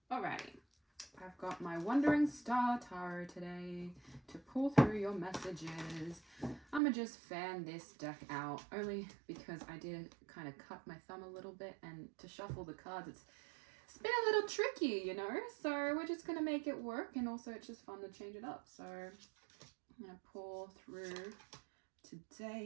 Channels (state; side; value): drops out; left; at 6.8 s